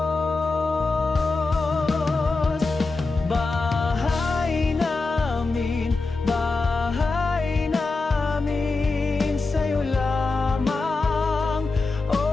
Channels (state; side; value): quieter; right; 3.7 dB